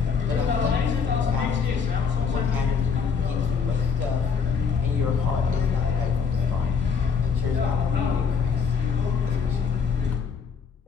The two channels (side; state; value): right; quieter; 5.9 dB